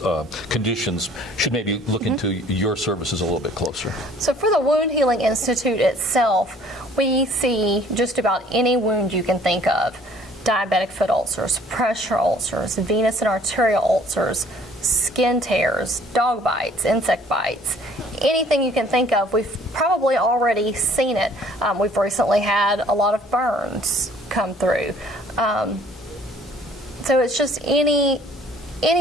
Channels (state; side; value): normal; both; correlation 0.56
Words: conditions should maybe look into your services a little bit closer. So for the Wound Healing Institute itself, we see just about any wound you can think of. Diabetic foot ulcers, pressure ulcers, venous and arterial ulcers, skin tears, dog bites, insect bites, anything you can think of. We've probably already seen it. We've recently had a lot of burns come through. So it's just any